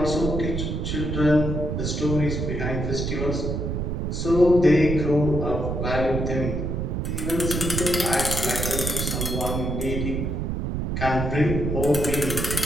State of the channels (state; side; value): noise; right; rumble, 2 dB below the sound